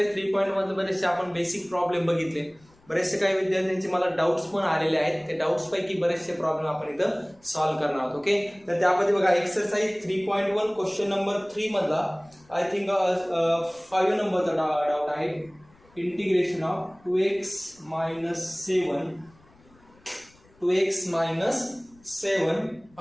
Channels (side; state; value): left; noise; rumble, 29 dB below the sound